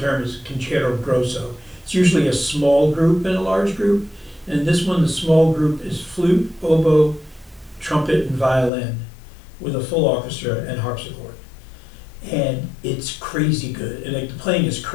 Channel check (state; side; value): drops out; right; at 8.7 s